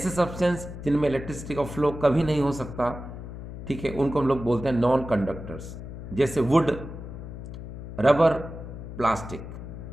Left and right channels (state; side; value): noise; left; hum, 10 dB below the sound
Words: सब्सटेंस जिनमें इलेक्ट्रिसिटी का फ्लो कभी नहीं हो सकता, ठीक है, उनको हम लोग बोलते हैं नॉन कंडक्टर्स। जैसे वुड, रबर, प्लास्टिक,